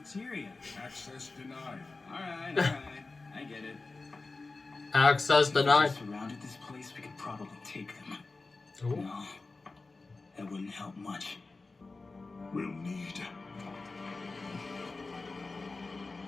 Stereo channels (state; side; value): quieter; right; 3.6 dB